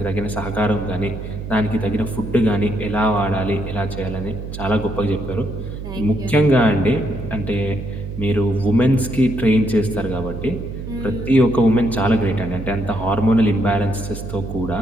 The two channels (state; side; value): noise; right; hum, 8 dB below the sound